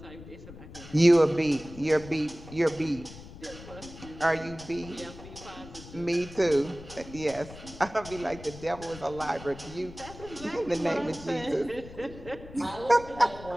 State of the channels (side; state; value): left; noise; rumble, 16 dB below the sound